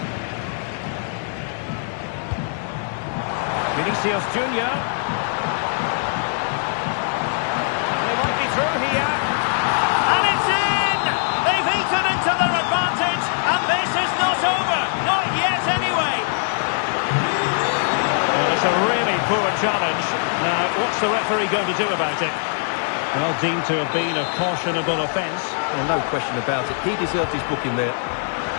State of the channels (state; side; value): silent; right; 64 dB below the other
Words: Vinicius Junior. And he might be through here. And it's in! They've eaten into their advantage, and this is not over. Not yet, anyway. Well, it's a really poor challenge. Now, what's the referee going to do about it? Well, deemed to have been a cautionable offence. Well, no question about it. He deserved his booking there.